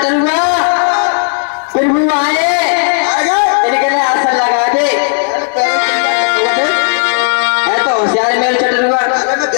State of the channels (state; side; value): silent; right; digital silence